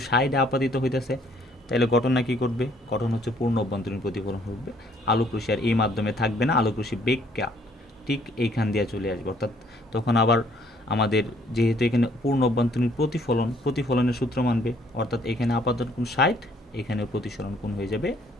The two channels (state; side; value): normal; both; correlation 0.63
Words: সাইডে আপাতিত হইতেছে তাহলে ঘটনা কী করবে, ঘটনা হচ্ছে পূর্ণ অভ্যন্তরীণ প্রতিফলন হবে, আলোক রশ্মি আর এই মাধ্যমে থাকবে না, আলোক রশ্মি বেগটা ঠিক এইখান দিয়ে চলে আসবে। অর্থাৎ তখন আবার আমাদের যেহেতু এখানে পূর্ণ অভ্যন্তরীণ প্রতিফলনের সূত্র মানবে, অর্থাৎ এখানে আপাতন কোণ 60, এখানে প্রতিসরণ কোণ হয়ে যাবে